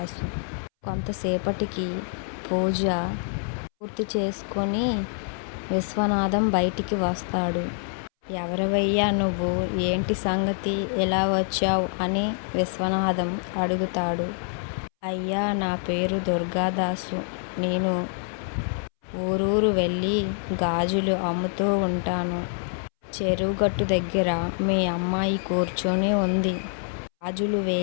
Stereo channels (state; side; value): silent; right; 61 dB below the other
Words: కొంతసేపటికి పూజ పూర్తి చేసుకొని విశ్వనాథం బయటికి వస్తాడు. ఎవరివయ్యా నువ్వు, ఏంటి సంగతి, ఎలా వచ్చావు అని విశ్వనాథం అడుగుతాడు. అయ్యా, నా పేరు దుర్గాదాసు. నేను ఊరూరు వెళ్ళి గాజులు అమ్ముతూ ఉంటాను. చెరువుగట్టు దగ్గర మీ అమ్మాయి కూర్చొని ఉంది. గాజులు